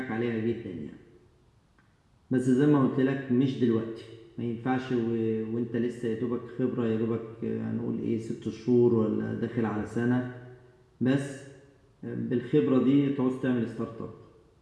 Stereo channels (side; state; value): both; identical; correlation 1.00